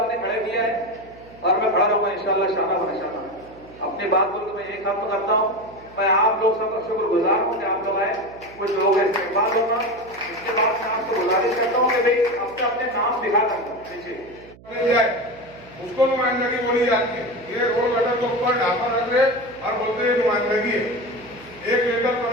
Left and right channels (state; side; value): noise; right; hum, 22 dB below the sound